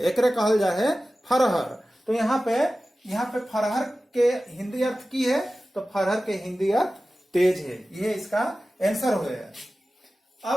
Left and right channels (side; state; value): both; normal; correlation 0.95